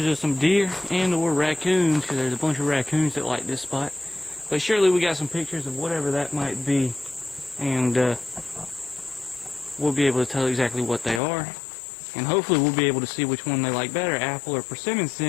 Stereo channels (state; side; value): drops out; right; at 11.2 s